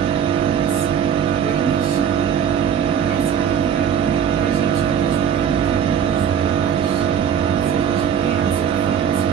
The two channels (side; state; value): left; quieter; 8.3 dB